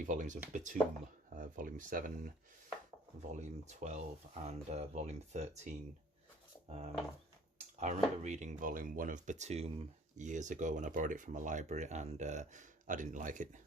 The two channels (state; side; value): normal; both; correlation 0.53